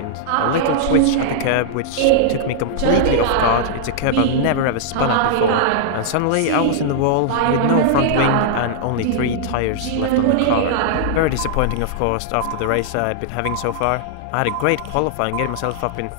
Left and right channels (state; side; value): different; both; correlation -0.01